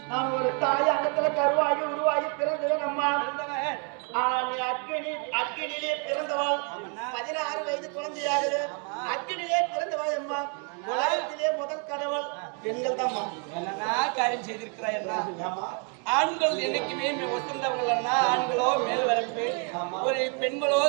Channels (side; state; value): left; quieter; 39.0 dB